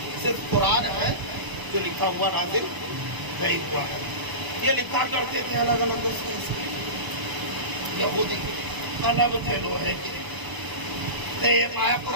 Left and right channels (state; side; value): late; left; 1.0 ms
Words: صرف قرآن ہے جو لکھا ہوا نازل نہیں ہوا ہے. یہ لکھا کرتے تھے الگ الگ اس کے. یہودی قلم تھے لوہے کے. یہ پایا